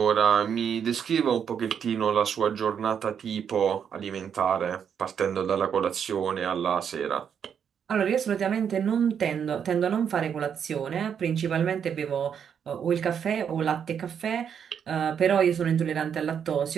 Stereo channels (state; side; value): quieter; left; 7.8 dB